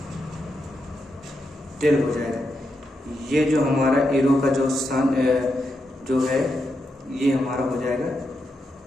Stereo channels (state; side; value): normal; both; correlation 0.84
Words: हो जाएगा। ये जो हमारा एरो का जो है ये हमारा हो जाएगा